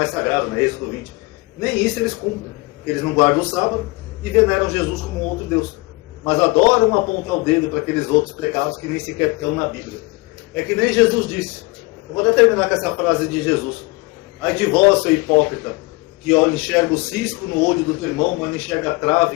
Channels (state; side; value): quieter; right; 25.9 dB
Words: sagrado, né? Êxodo 20. Nem isso eles cumprem. Eles não guardam o sábado e veneram Jesus como outro Deus. Mas adoram apontar o dedo para aqueles outros pecados que nem sequer estão na Bíblia. É que nem Jesus disse. Eu vou até terminar com essa frase de Jesus. Ai de vós, seu hipócrita, que enxerga o cisco no olho do teu irmão, mas não enxerga a